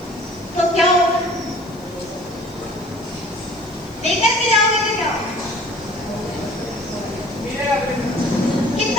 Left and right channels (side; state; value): left; noise; hiss, 26 dB below the sound